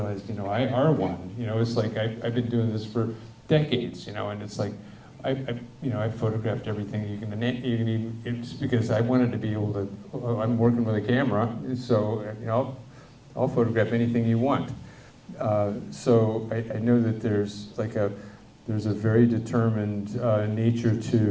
you know, I are one. You know, it's like I've been doing this for decades, you know, and it's like I photographed everything you can even, it's because I wanted to be able to. I'm working with a camera, so you know, I'll photograph anything you want. So I know that there's a very determined nature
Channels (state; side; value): identical; both; correlation 1.00